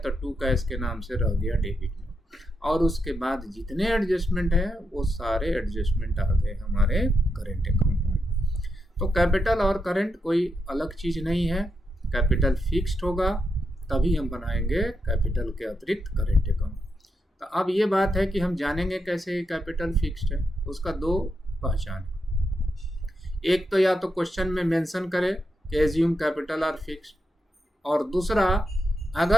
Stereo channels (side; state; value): both; normal; correlation 0.84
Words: टू कैश के नाम से रह गया डेबिट में, और उसके बाद जितने एडजस्टमेंट है वो सारे एडजस्टमेंट आ गए हमारे करेंट अकाउंट में। तो कैपिटल और करेंट कोई अलग चीज़ नहीं है, कैपिटल फिक्स्ड होगा तभी हम बनाएंगे कैपिटल के अतिरिक्त करेंट अकाउंट। तो अब ये बात है कि हम जानेंगे कैसे कैपिटल फिक्स्ड है, उसका दो पहचान। एक तो या तो क्वेश्चन में मेंशन करे कि एज्यूम कैपिटल आर फिक्स्ड, और दूसरा